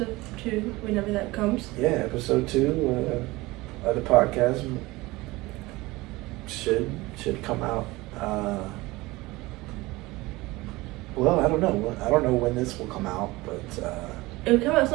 2 whenever that comes. yeah, episode 2 of the podcast should come out. Well, I don't know when this will come out, but It will come at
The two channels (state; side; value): quieter; left; 20.9 dB